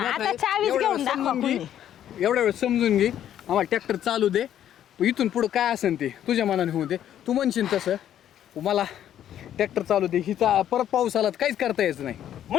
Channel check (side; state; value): right; quieter; 10.8 dB